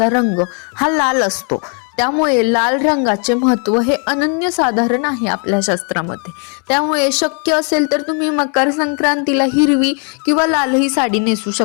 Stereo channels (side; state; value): right; quieter; 39.7 dB